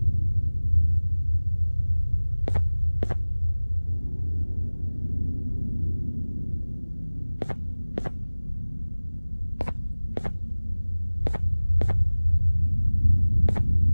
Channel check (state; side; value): inverted; both; correlation -1.00